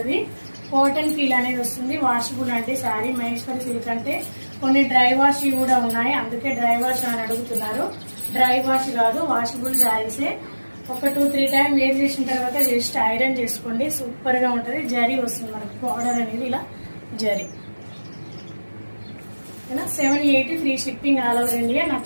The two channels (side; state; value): both; inverted; correlation -1.00